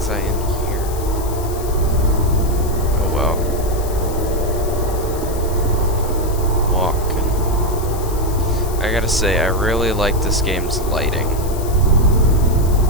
I in here? Oh well. Walking. I gotta say, I really like this game's lighting.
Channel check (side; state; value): left; noise; hiss, 14 dB below the sound